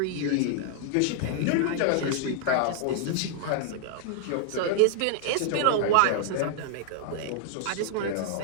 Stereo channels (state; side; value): different; both; correlation -0.01